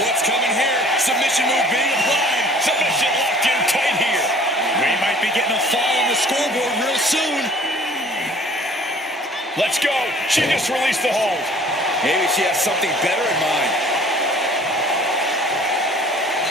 what's coming here? Submission move being applied. Submission locked in tight here. We might be getting a fall on the scoreboard real soon. Let's go. She just released the hold. Maybe she has something better in mind.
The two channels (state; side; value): normal; both; correlation 0.51